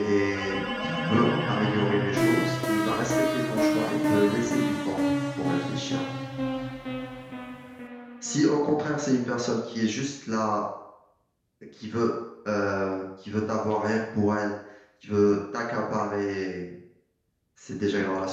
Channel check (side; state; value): both; identical; correlation 1.00